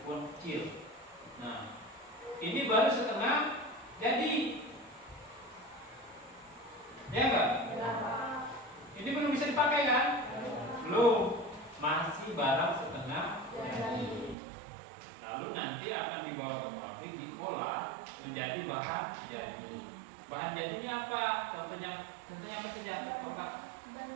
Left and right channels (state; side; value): drops out; left; at 14.4 s